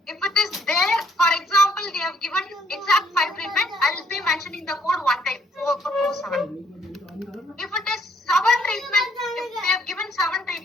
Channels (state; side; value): normal; both; correlation 0.68